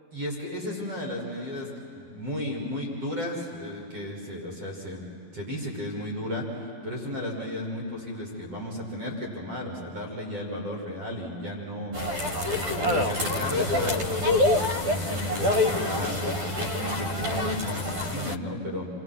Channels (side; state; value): left; late; 12 ms